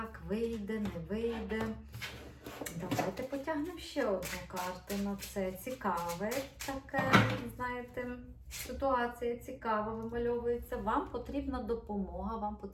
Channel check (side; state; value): both; identical; correlation 1.00